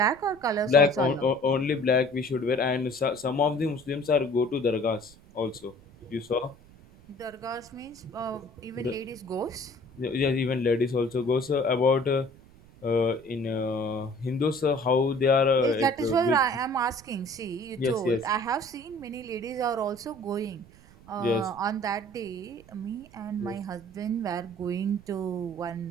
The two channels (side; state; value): right; noise; rumble, 24 dB below the sound